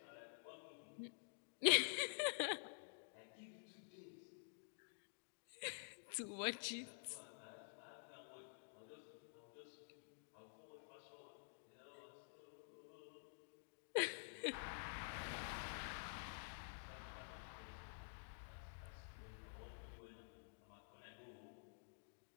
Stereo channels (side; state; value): right; silent; digital silence